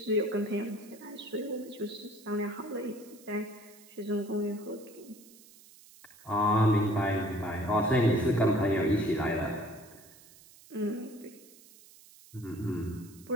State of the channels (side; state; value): right; noise; hiss, 23 dB below the sound